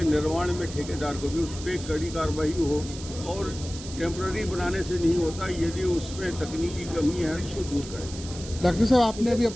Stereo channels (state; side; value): noise; right; hiss, 13 dB below the sound